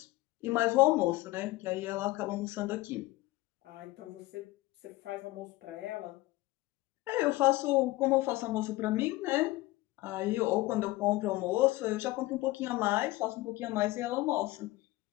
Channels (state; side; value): quieter; right; 19.3 dB